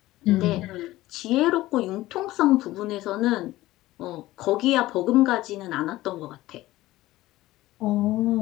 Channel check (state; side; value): quieter; right; 17.0 dB